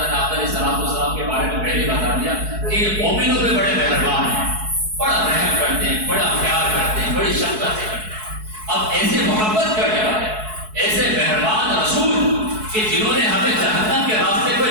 نے آپ علیہ السلام کے بارے میں پہلے بتا دیا کہ یہ مومنوں پہ بڑے مہربان ہیں, بڑا رحم کرتے ہیں, بڑا پیار کرتے ہیں, بڑی شفقت کرتے ہیں. اب ایسے محبت کرنے والے, ایسے مہربان رسول کہ جنہوں نے ہمیں جہنم کے راستے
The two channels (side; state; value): left; late; 4.6 ms